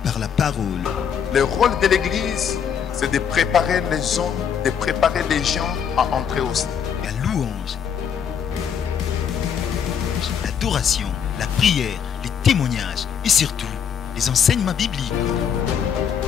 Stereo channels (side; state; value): right; quieter; 7.7 dB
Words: par la parole. Le rôle de l'Église, c'est de préparer les hommes, de préparer les gens à entrer au ciel. La louange, l'adoration, la prière, les témoignages et surtout les enseignements bibliques.